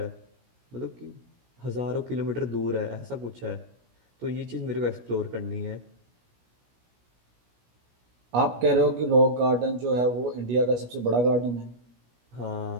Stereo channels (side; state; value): left; late; 17 ms